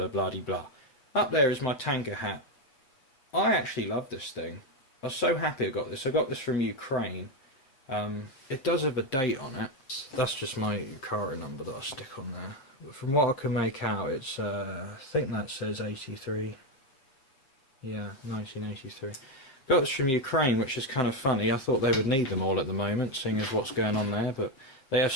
bloody blah. Up there is my tanker hat. I actually love this thing. I was so happy I got this. I got this from Ukraine. It does have a date on it. That's just my Yukara number that I stick on there. But from what I can make out, it's I think that says 83. Yeah, 1983. Got this from Ukraine, which is kind of funny. I thought they would need them all at the moment, seeing as what's going on there, but they have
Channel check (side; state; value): right; late; 7.6 ms